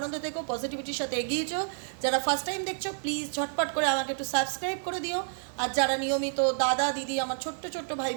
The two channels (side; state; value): left; silent; 58 dB below the other